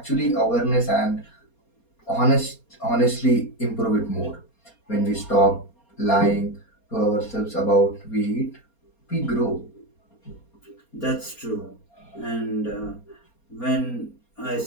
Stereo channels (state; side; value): late; right; 4.3 ms